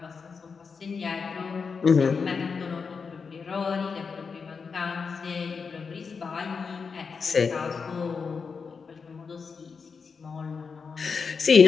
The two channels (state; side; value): quieter; right; 5.4 dB